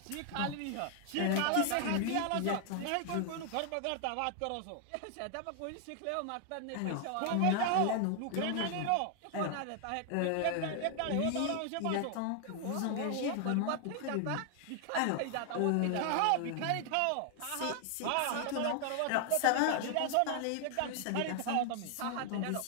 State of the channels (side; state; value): both; different; correlation 0.00